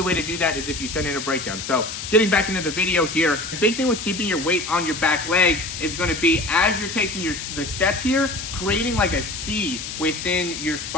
way to do that is if you send in a breakdown. So getting back into the video here, the big thing with keeping your weight on your back leg is going to be, as you're taking the step here, creating like a C within your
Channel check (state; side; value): noise; left; hiss, 7 dB below the sound